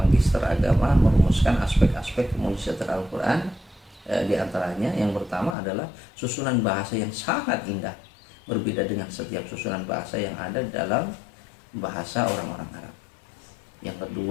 Agama, merumuskan aspek-aspek kemujizatan Al-Quran. Di antaranya yang pertama adalah susunan bahasa yang sangat indah, berbeda dengan setiap susunan bahasa yang ada dalam bahasa orang-orang Arab. Yang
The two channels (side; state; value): right; drops out; at 5.6 s